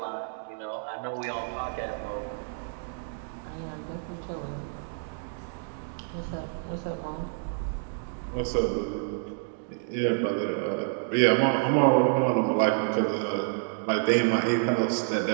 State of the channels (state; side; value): silent; left; digital silence